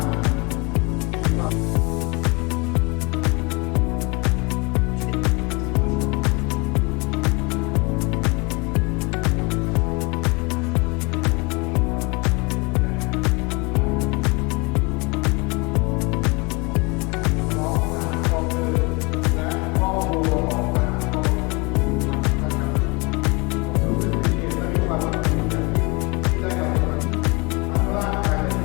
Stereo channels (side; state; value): right; quieter; 27.6 dB